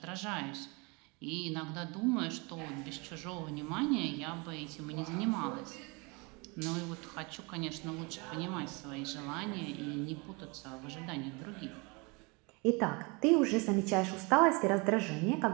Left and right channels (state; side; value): quieter; left; 28.9 dB